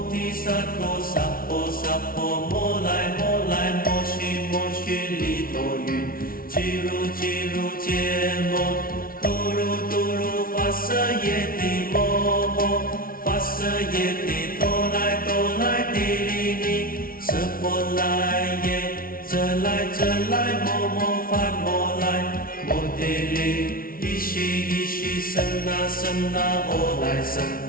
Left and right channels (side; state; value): right; late; 0.43 ms